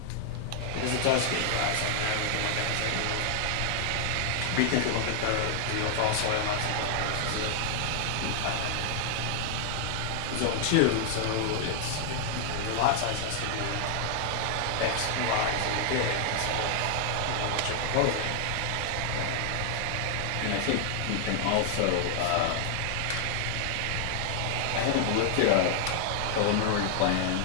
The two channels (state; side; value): different; both; correlation 0.00